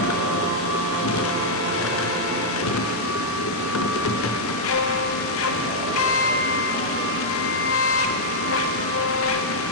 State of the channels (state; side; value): normal; both; correlation -0.05